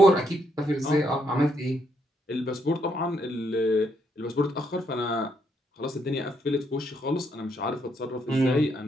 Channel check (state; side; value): normal; both; correlation 0.75